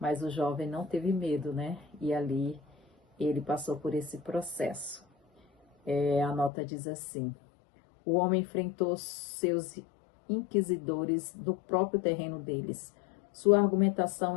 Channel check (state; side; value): drops out; right; at 6.5 s